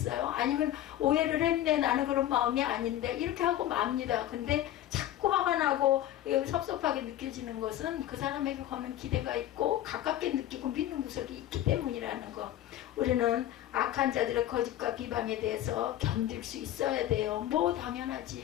아니면 오해를 했네, 나는 그런 마음이 아닌데 이렇게 하고 맙니다. 근데 자꾸 화가 나고 섭섭하게 느껴지는 것은 그 사람에게 거는 기대가 있고 가깝게 느끼고 믿는 구석이 있기 때문이라는 거. 우리는 악한 자들의 거짓과 비방에 대해서 견딜 수 있어야 돼요. 뭐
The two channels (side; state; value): right; quieter; 12.9 dB